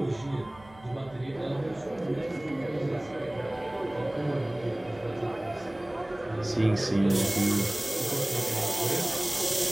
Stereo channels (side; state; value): right; noise; hum, 23 dB below the sound